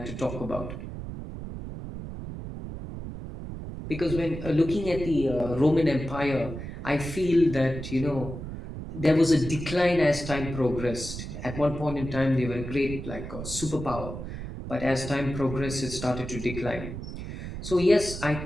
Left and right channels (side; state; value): right; noise; rumble, 8 dB below the sound